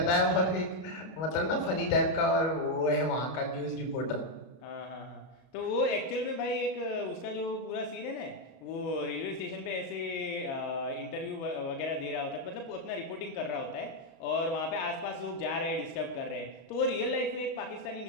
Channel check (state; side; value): late; right; 31 ms